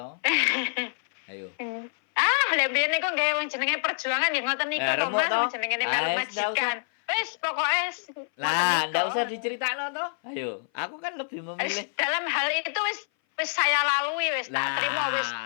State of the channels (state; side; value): silent; right; 58 dB below the other